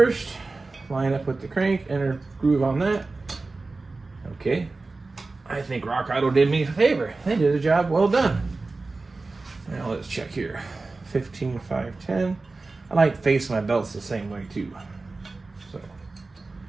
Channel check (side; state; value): left; quieter; 3.6 dB